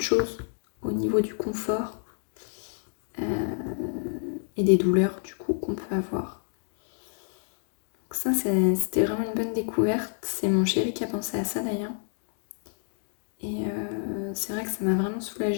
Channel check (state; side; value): silent; right; digital silence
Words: choses au niveau du confort et des douleurs du coup qu'on peut avoir. Donc ça, c'était vraiment une bonne découverte. C'est mon chéri qui a pensé à ça d'ailleurs. Et c'est vrai que ça m'a vraiment